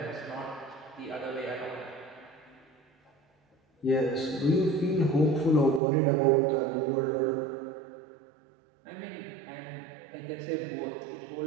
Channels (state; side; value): drops out; left; at 5.8 s